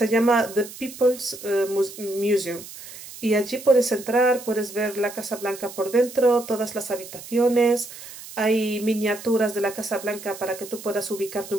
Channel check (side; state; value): right; noise; hiss, 14 dB below the sound